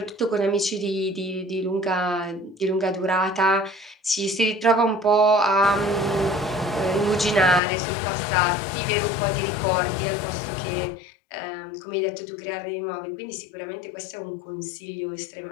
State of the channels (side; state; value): right; drops out; at 7.6 s